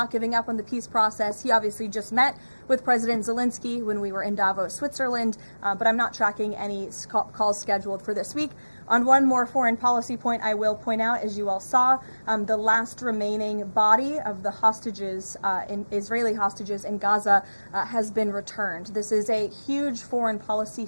giving up on the peace process. He obviously just met with President Zelensky when we were in Davos, Switzerland, but I'm not tracking any calls scheduled for this week. On one more foreign policy point, I will point out, as you all saw, the last remaining body of the hostages, Israeli hostages in Gaza, has been returned. This is a huge foreign policy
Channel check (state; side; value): inverted; both; correlation -1.00